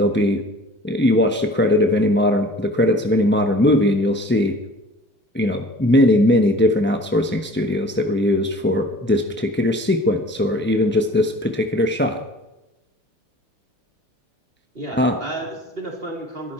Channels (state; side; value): normal; both; correlation 0.47